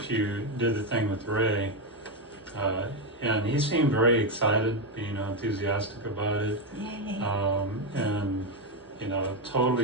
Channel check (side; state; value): both; normal; correlation 0.07